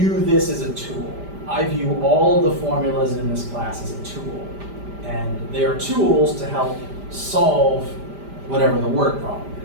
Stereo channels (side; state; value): left; late; 5.0 ms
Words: this as a tool. I view all of the formulas in this class as a tool. And they are tools to help solve whatever the word problem